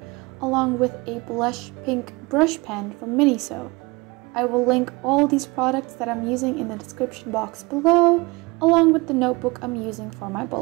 along with a blush pink brush pen from Miniso. I will link all these products that I'm using in the description box below, along with the notebook I'm using for my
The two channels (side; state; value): left; quieter; 24.7 dB